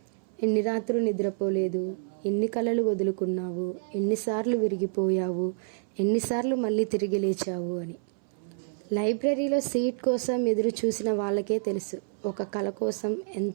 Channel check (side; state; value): left; silent; 59 dB below the other